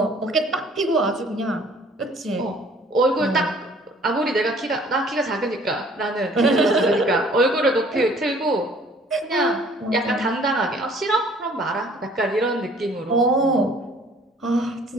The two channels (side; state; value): both; normal; correlation 0.55